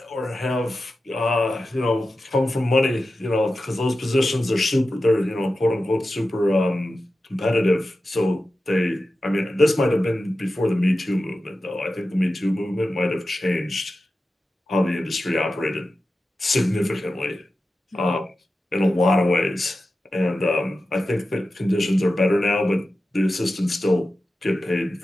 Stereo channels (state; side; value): normal; both; correlation 0.93